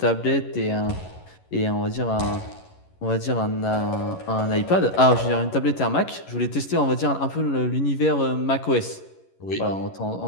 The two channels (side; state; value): right; late; 11 ms